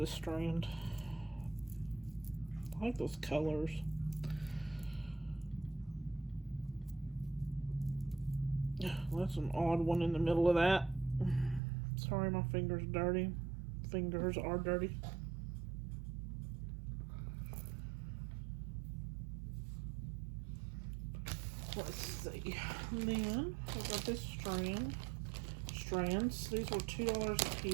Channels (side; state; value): left; drops out; at 11.6 s